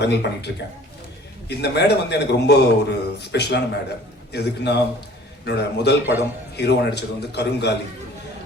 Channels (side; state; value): both; normal; correlation 0.50